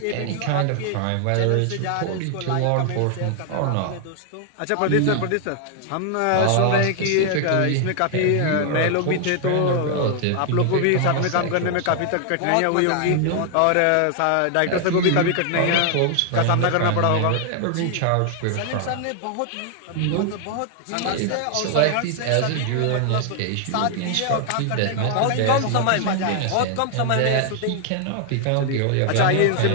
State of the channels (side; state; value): both; different; correlation 0.00